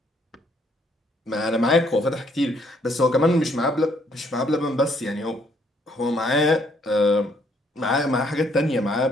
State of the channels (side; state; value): both; normal; correlation 0.67